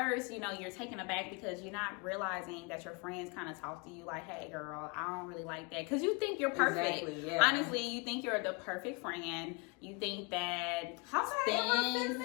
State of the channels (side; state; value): right; quieter; 30.3 dB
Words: you're taken aback because you're not realizing that your friends kind of talk to you like, hey, girl, I don't really like that. Because you think you're perfect. Exactly, yeah. Honestly, you think you're the perfect friend. You think that how did I